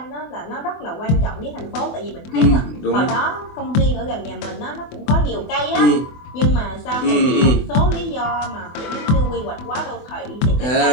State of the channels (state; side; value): late; right; 24 ms